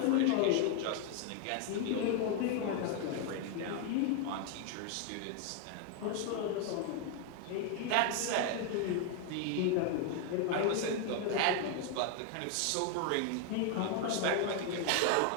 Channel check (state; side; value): different; both; correlation 0.01